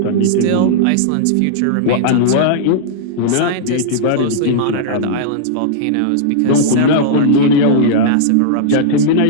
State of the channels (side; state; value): both; different; correlation -0.02